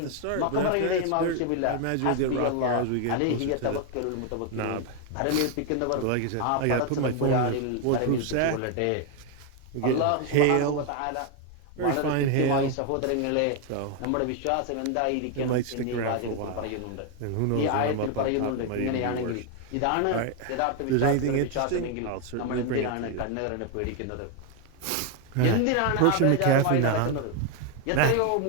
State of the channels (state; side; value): different; both; correlation 0.01